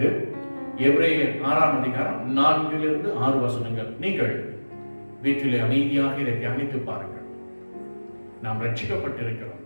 எபிரேயர் 6ஆம் அதிகாரம் 4-6 வசனங்கள். நீங்கள் வீட்டிலே அமைதியாக இதை தியானித்து பாருங்கள். நாம் ரட்சிக்கப்பட்டிருக்கிறோம்.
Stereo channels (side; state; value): both; inverted; correlation -1.00